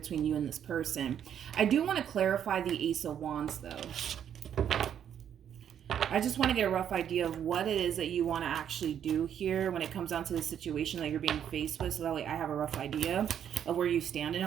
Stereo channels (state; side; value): quieter; left; 9.2 dB